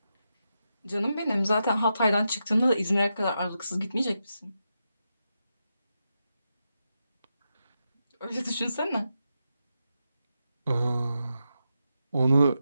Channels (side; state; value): both; inverted; correlation -0.87